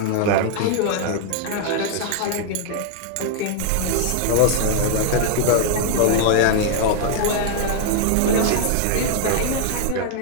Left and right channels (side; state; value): both; different; correlation 0.00